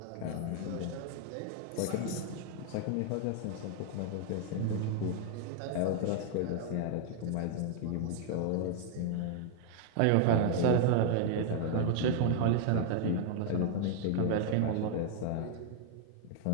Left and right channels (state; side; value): different; both; correlation 0.00